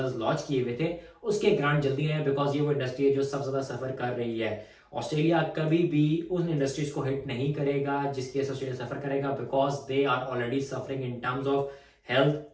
लॉन्च किए हुए थे उसके ग्रांट जल्दी आए, बिकॉज ये वो इंडस्ट्री है जो सबसे ज्यादा सफर कर रही है। ऑस्ट्रेलिया कभी भी उन इंडस्ट्रीज को हिट नहीं करेगा जिसके ऑस्ट्रेलिया सफर करेगा, because they are already suffering in terms of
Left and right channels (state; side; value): identical; both; correlation 1.00